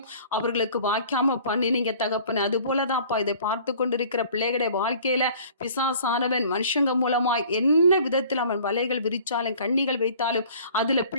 அவர்களுக்கு வாய்க்காம பண்ணினீங்க தகப்பனே. அது போலதான் அப்பா இதை பார்த்து கொண்டிருக்கிற பிள்ளைகளுடைய வாழ்க்கையில பிசாசானவன் மனுஷங்க மூலமாய் என்ன விதத்தில் அவன் வலைகள் விரிச்சாலும் கண்ணிகள் வைத்தாலும் அதுல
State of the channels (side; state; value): both; inverted; correlation -0.50